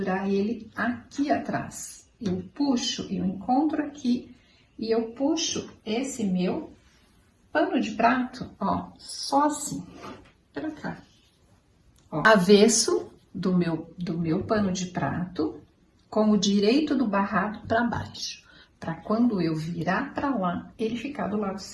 ele aqui atrás. eu puxo, eu encontro aqui e eu puxo esse meu pano de prato, ó, só assim, pra cá. Ó, avesso do meu pano de prato, com o direito do barrado para baixo, para quando eu virar para lá, ele ficar do lado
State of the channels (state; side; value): identical; both; correlation 1.00